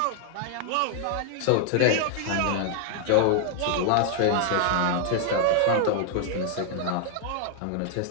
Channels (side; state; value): both; different; correlation 0.00